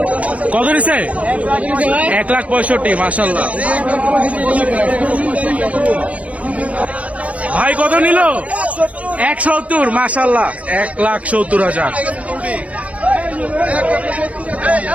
কত নিছে? 1,65,000। মাশাআল্লাহ ভাই কত নিল? 170। মাশাআল্লাহ 1,70,000।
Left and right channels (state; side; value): late; left; 0.066 ms